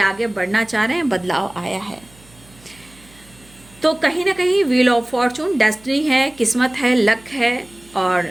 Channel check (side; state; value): right; noise; hum, 26 dB below the sound